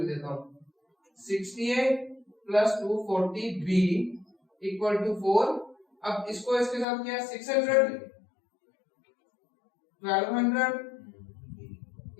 देता हूँ, 60a plus 240b equal to 4। अब इसको इसके साथ क्या, 600 1200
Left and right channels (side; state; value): right; drops out; at 6.9 s